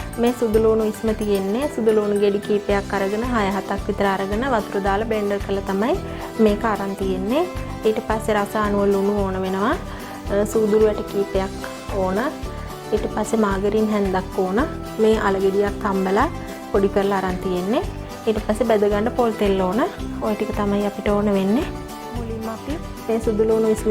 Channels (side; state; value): both; identical; correlation 1.00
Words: මේ සුදු ලුණු ඉස්ම තියෙන්නේ සුදු ලුණු ගෙඩි කීපයක් අරගෙන 6-7ක් විතර අරගෙන වතුර දාලා බ්ලෙන්ඩර් කරලා තමයි මේක අරන් තියෙන්නේ. ඊට පස්සේ රස අනුව ලුණු ඕන වෙනවා. සූදුළු වැට කීපයක් ඕන. ඊට පස්සේ මාගරින් හැන්දක් ඕන. මේ අල ගෙඩියක් තම්බලා පොඩි කරලා අරන් තියෙන්නේ. ඊට පස්සේ බෙද ගන්න පොල් තෙල් ඕන. ওই ටික තමයි අපිට ඕන වෙන්නේ. මුලින්ම අපි මේ සුදු ලුණු ඉස්ම